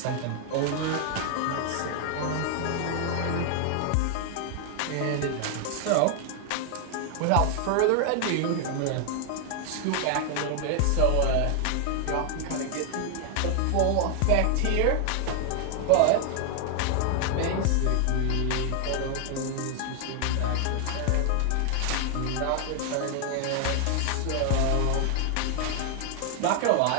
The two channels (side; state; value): both; different; correlation 0.00